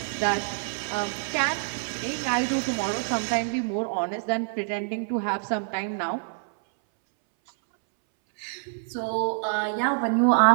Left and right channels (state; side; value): silent; left; 60 dB below the other